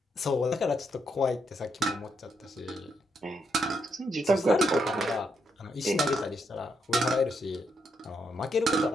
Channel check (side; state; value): both; normal; correlation 0.78